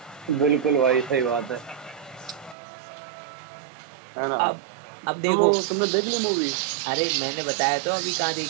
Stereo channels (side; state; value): left; drops out; at 2.6 s